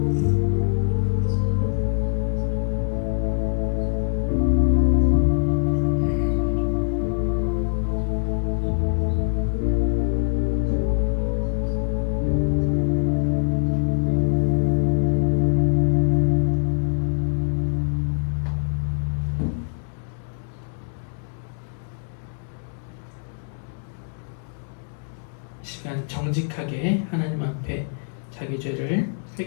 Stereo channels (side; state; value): right; silent; digital silence